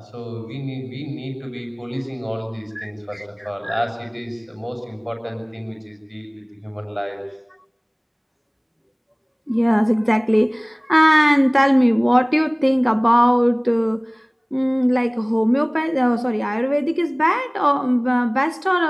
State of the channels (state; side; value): identical; both; correlation 1.00